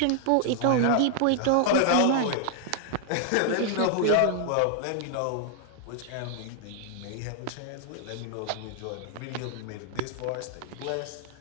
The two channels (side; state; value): both; different; correlation 0.00